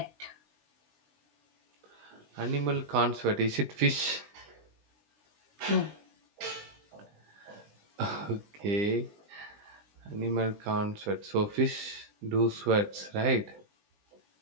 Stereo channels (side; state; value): left; late; 20 ms